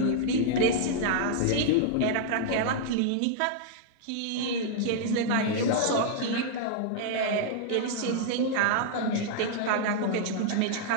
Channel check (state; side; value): different; both; correlation -0.01